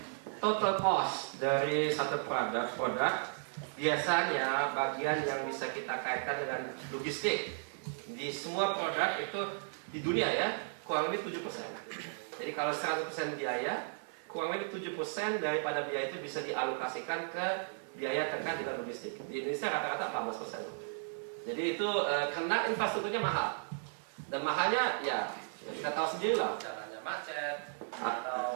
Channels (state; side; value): silent; left; digital silence